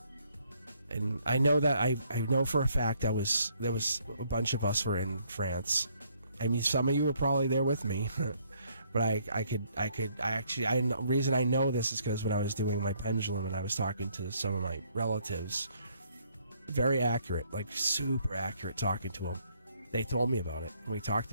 and I know that I know for a fact there was a bunch of us were in France. I mean, some of you were probably there with me, but the reason I know this is because when I was doing my pendulum and I was talking to some of my relatives, very accurate, like super accurate, talking to them. They told me about it, and we talked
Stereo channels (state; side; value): inverted; both; correlation -0.67